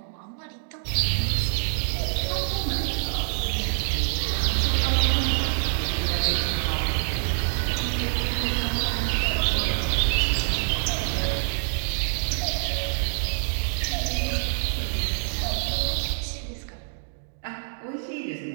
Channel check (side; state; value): left; silent; digital silence